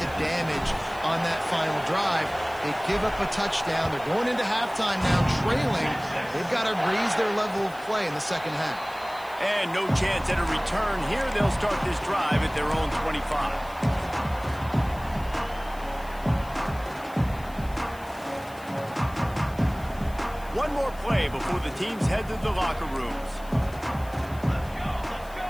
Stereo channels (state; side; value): noise; left; hiss, 22 dB below the sound